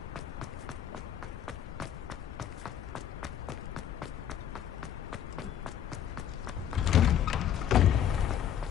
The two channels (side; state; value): right; quieter; 10.0 dB